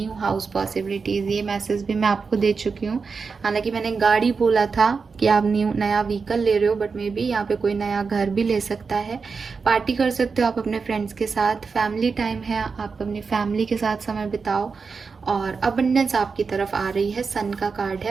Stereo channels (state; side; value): quieter; left; 5.0 dB